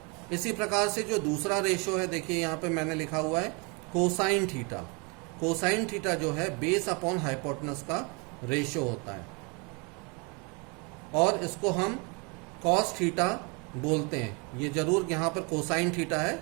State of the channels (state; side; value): quieter; left; 31.4 dB